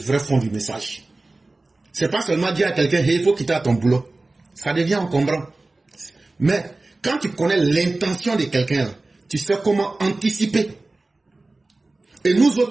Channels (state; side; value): quieter; left; 3.1 dB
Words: fond du message. C'est pas seulement dire à quelqu'un, hey, il faut quitter ton boulot. Ça devient encombrant. Mais quand tu connais l'intention de quelqu'un, tu sais comment anticiper. Et nous